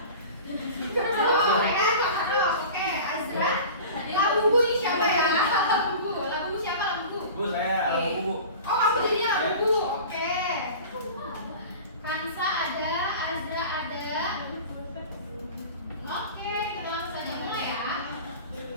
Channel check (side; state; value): both; inverted; correlation -0.37